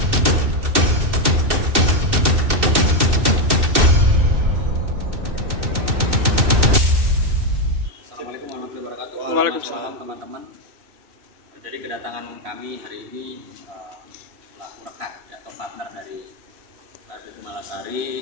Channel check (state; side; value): late; left; 2.6 ms